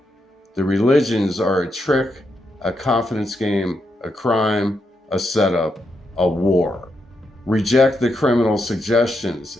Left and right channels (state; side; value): normal; both; correlation 0.82